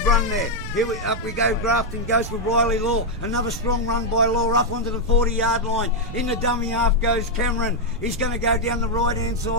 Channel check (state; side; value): noise; right; rumble, 10 dB below the sound